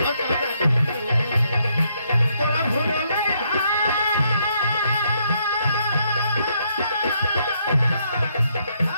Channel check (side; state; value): both; inverted; correlation -0.73